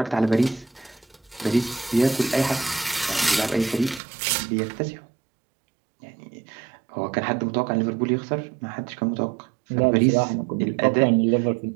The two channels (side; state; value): left; drops out; at 4.0 s